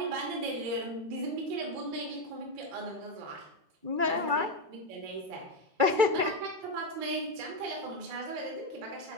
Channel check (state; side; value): late; left; 2.3 ms